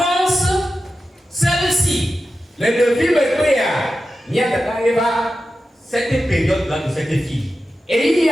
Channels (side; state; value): both; normal; correlation 0.92